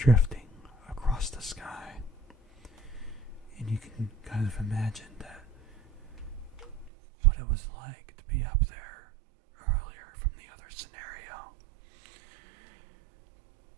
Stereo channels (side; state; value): left; drops out; at 6.9 s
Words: across the sky. And you can kind of imagine that what it was like to be up there earlier from the other scenario.